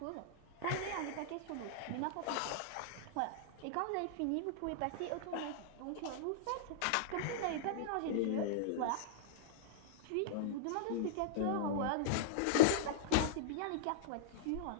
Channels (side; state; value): both; different; correlation -0.02